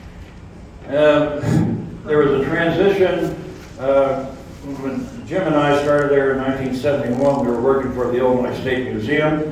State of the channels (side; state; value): both; identical; correlation 1.00